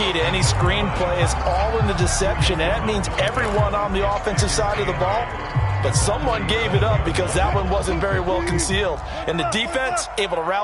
to any screen play is all in the deception, and that means everyone on the offensive side of the ball. But someone gave it up because that one wasn't very well concealed. And the defense able to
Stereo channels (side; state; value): both; identical; correlation 1.00